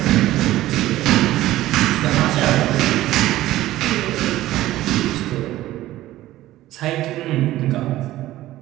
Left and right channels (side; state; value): left; quieter; 15.4 dB